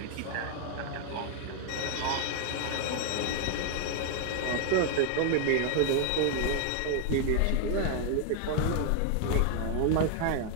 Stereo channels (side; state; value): both; different; correlation 0.00